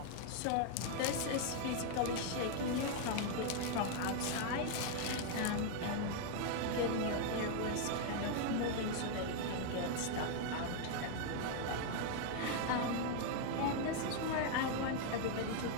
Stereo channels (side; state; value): both; different; correlation 0.00